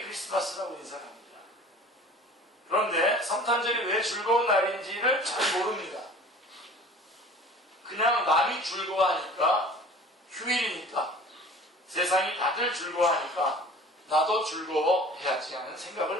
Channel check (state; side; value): normal; both; correlation 0.44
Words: 크리스마스라고 인사를 합니다. 그런데 성탄절이 왜 즐거운 날인지를 잘 모릅니다. 그냥 남이 즐거워하니까, 휴일이니까, 세상이 다들 즐거워하니까 나도 즐거워해야지 하는